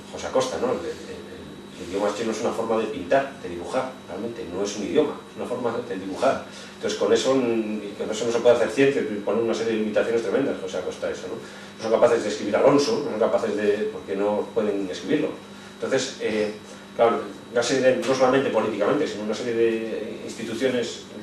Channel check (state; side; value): identical; both; correlation 1.00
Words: José Acosta, ¿no? El idioma chino es una forma de pintar, de dibujar, realmente, no es un idioma, es una forma de dibujar. Entonces con eso no se puede hacer ciencia, poner una serie de limitaciones tremendas, José Acosta, eso, ¿no? No son capaces de escribir Alonso, no son capaces porque no pueden escribirlo. Entonces, claro, una serie no solamente políticamente, sino una serie de instituciones